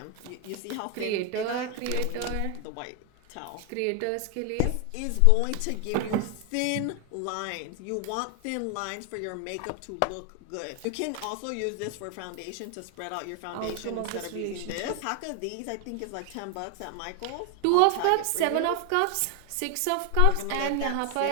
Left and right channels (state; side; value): different; both; correlation 0.01